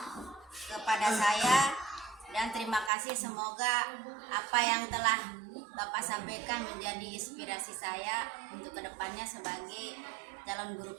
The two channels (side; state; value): left; drops out; at 2.9 s